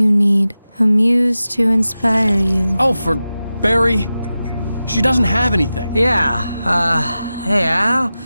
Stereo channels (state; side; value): inverted; both; correlation -0.94